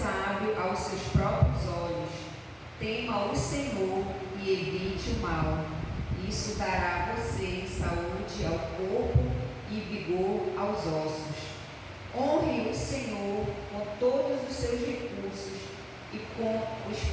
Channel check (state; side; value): identical; both; correlation 1.00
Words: aos seus próprios olhos. Tema o Senhor e evite o mal. Isso dará a você saúde ao corpo e vigor aos ossos. Honre o Senhor com todos os seus recursos e com os